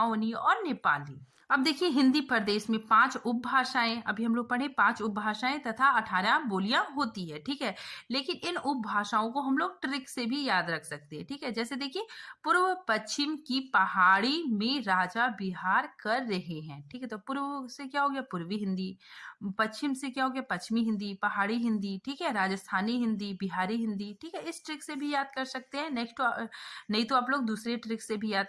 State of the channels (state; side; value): identical; both; correlation 1.00